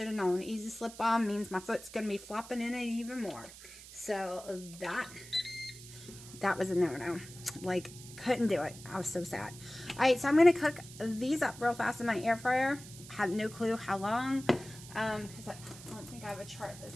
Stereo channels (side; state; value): right; noise; hiss, 16 dB below the sound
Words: have known. Easy slip on means my foot's going to be flopping in it even more. So that was a no-no. Like, couldn't do it. I was so sad. All right, so I'm going to cook these up real fast in my air fryer. I have no clue how long, because I don't think I have a chart that